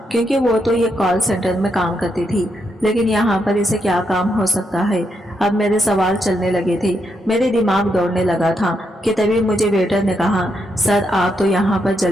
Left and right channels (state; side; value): normal; both; correlation 0.80